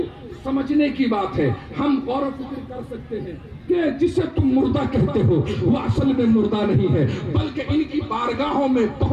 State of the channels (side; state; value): both; identical; correlation 1.00